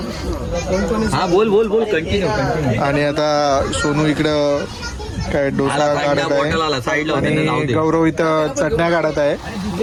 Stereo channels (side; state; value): both; identical; correlation 1.00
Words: हा बोल बोल बोल कंटिन्यू कंटिन्यू. आणि आता सोनू इकडं काय डोसा काढत आहे आणि गौरव इथं चटण्या काढत आहे.